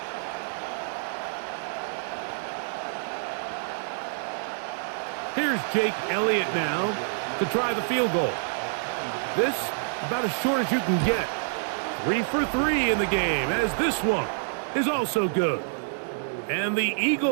Here's Jake Elliott now to try the field goal. This about as short as you can get. 3 for 3 in the game, as this one is also good. And the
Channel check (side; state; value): left; silent; digital silence